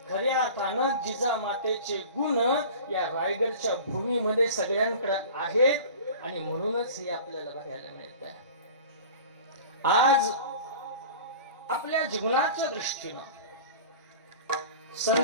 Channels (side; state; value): both; inverted; correlation -0.38